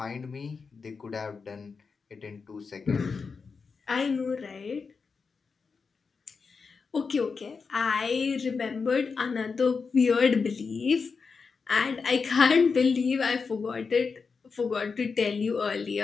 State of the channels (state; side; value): quieter; right; 5.1 dB